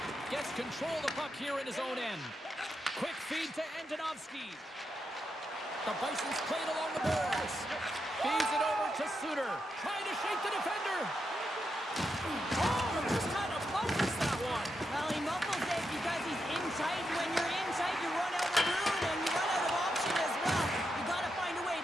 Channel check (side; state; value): both; normal; correlation 0.85